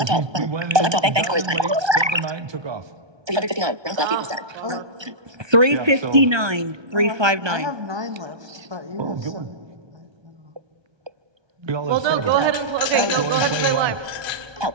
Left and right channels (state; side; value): late; left; 1.2 ms